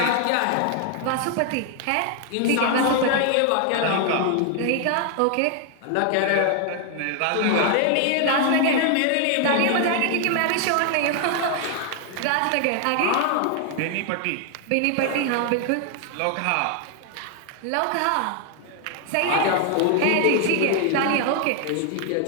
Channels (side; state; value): both; different; correlation 0.00